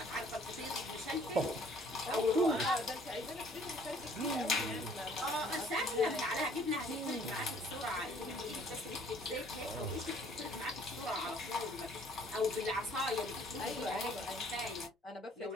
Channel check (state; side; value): normal; both; correlation 0.58